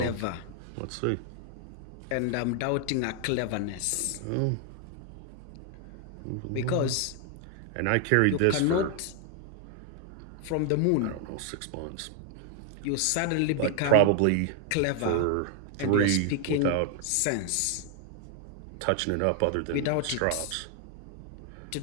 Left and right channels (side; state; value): both; different; correlation 0.00